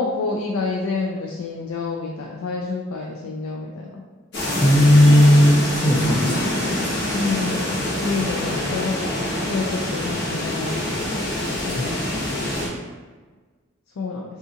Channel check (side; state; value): both; normal; correlation 0.72